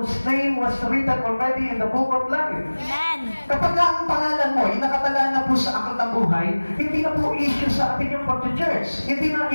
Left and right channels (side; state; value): both; inverted; correlation -1.00